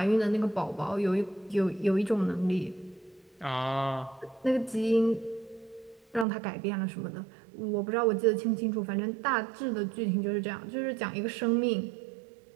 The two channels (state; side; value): drops out; left; at 6.2 s